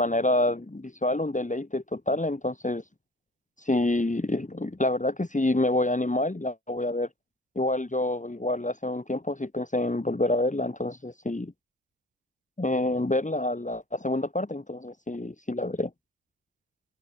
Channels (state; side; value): normal; both; correlation 0.45